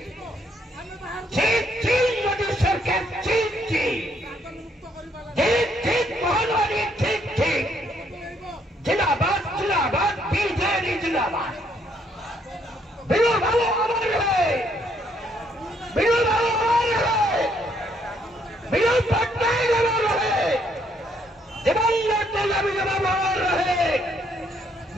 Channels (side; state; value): both; normal; correlation 0.70